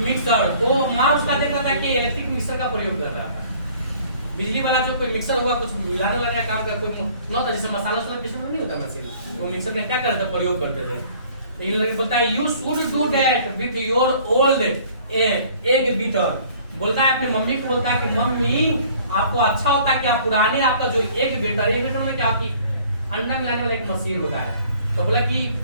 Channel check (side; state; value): both; inverted; correlation -0.54